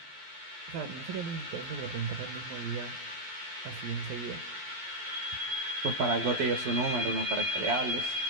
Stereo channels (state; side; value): late; left; 12 ms